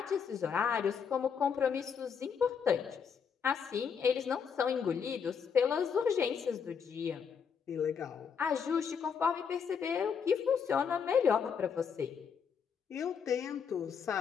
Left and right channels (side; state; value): right; quieter; 6.7 dB